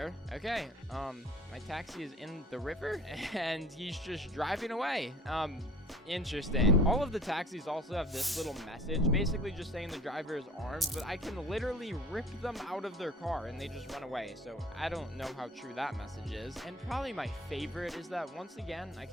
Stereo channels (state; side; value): normal; both; correlation 0.46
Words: okay, my taxi is in the river and he's just driving away. Interesting. All of the taxis also have this little message, basically just saying the driver is armed, but I can literally rip them out of their car and they just run away. So I don't know how true that message is. And probably my favorite is that once again, I